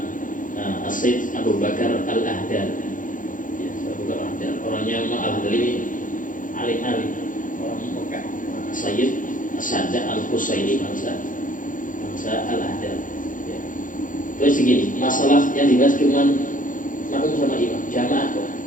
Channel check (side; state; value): right; late; 0.38 ms